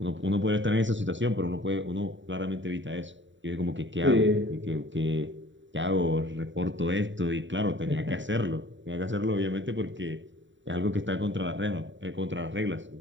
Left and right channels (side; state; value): left; late; 0.54 ms